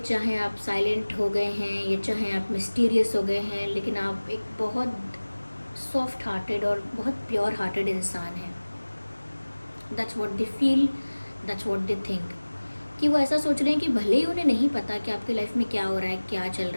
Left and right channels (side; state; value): both; inverted; correlation -1.00